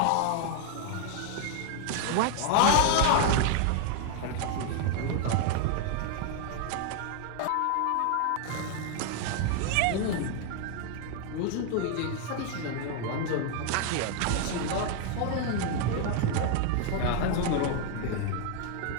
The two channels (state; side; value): different; both; correlation 0.00